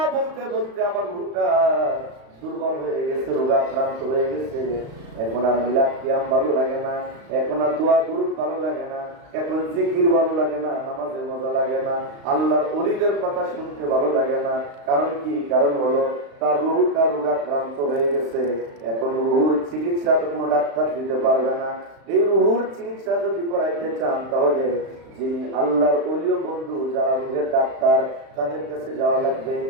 বলতে বলতে আমার রুহুটা দুর্বল হয়ে গেছে, রোগাক্রান্ত হয়ে গেছে। এখন আর মিলাদ কিয়াম ভালো লাগে না, এখন আর দোয়া দুরূদ ভালো লাগে না, এখন জিকির ভালো লাগে না, নামাজে মজা লাগে না, আল্লাহর ওলিদের কথা শুনতে ভালো লাগে না। কারণ কি? কারণ হলো তার রুহুটা রোগাক্রান্ত হয়ে গেছে। এখন রুহুর চিকিৎসা তো কোনো ডাক্তার দিতে পারবে না। এই রুহুর চিকিৎসা যদি করাইতে চান, তাহলে যিনি আল্লাহর ওলিও বন্ধু, যারা রুহের ডাক্তার, তাদের কাছে যাওয়া লাগবে।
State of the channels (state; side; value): late; left; 35 ms